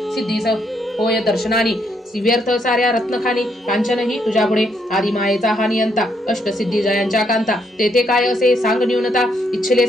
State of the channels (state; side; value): normal; both; correlation 0.74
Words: सिद्धीस होय दर्शनानी व्यर्थ साऱ्या रत्नखानी कांचनही तुझ्या पुढे आदी मायेचा हा नियंता अष्टसिद्धी जयांच्या कांता तेथे काय असे सांग न्यूनता इच्छिले